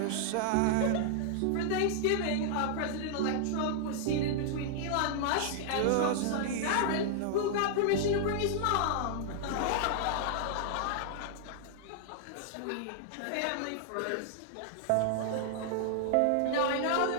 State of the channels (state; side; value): different; both; correlation -0.01